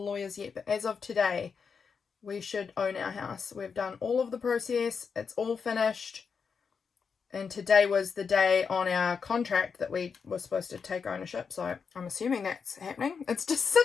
yet, but as of today, we should own our house. We've done all of the process. It's all finished. And today was the day on our contract that we were supposed to take ownership. So I'm assuming that's happening. It's just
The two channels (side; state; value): right; quieter; 5.9 dB